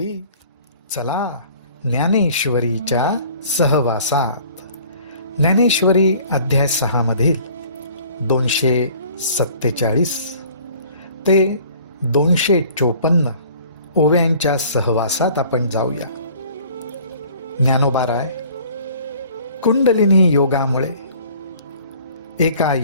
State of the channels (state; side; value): inverted; both; correlation -0.52